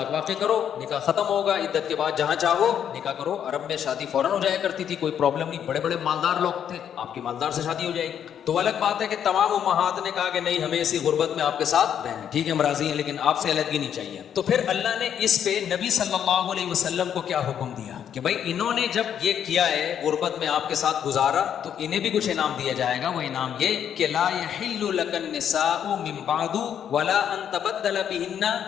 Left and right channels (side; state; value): right; quieter; 9.0 dB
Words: واقع کرو, نکاح ختم ہوگا, عدت کے بعد جہاں چاہو نکاح کرو. عرب میں شادی فوراً ہو جایا کرتی تھی, کوئی پرابلم نہیں, بڑے بڑے مالدار لوگ تھے, آپ کی مالدار سے شادی ہو جائے گی. تو الگ بات ہے کہ تمام امہات نے کہا کہ نہیں ہمیں اسی غربت میں آپ کے ساتھ رہنا، ٹھیک ہے ہم راضی ہیں لیکن آپ سے علیحدگی نہیں چاہیے. تو پھر اللہ نے اس پہ نبی صلی اللہ علیہ وسلم کو کیا حکم دیا کہ بھائی انہوں نے جب یہ کیا ہے غربت میں آپ کے ساتھ گزارا تو انہیں بھی کچھ انعام دیا جائے گا. وہ انعام یہ کہ لا یحل لک النساء من بعد ولا ان تبدل بهن